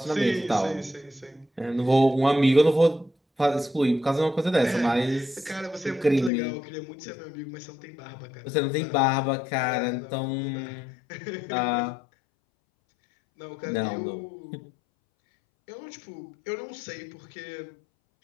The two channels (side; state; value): right; drops out; at 6.3 s